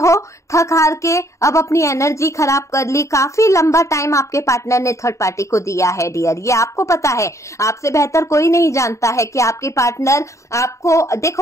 थक हार के, अब अपनी एनर्जी खराब कर ली। काफी लंबा टाइम आपके पार्टनर ने थर्ड पार्टी को दिया है डियर, ये आपको पता है, आपसे बेहतर कोई नहीं जानता है कि आपके पार्टनर आपको,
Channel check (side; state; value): right; late; 0.14 ms